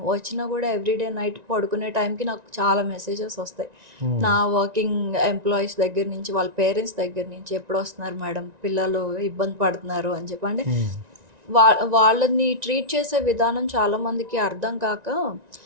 వచ్చినా కూడా ఎవ్రీడే నైట్ పడుకునే టైంకి నాకు చాలా మెసేజెస్ వస్తాయి నా వర్కింగ్ ఎంప్లాయీస్ దగ్గర నుంచి, వాళ్ళ పేరెంట్స్ దగ్గర నుంచి, ఎప్పుడు వస్తున్నారు మేడం, పిల్లలు ఇబ్బంది పడుతున్నారు అని చెప్పి. అంటే వాళ్ళని ట్రీట్ చేసే విధానం చాలామందికి అర్థం కాక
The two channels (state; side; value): late; left; 1.9 ms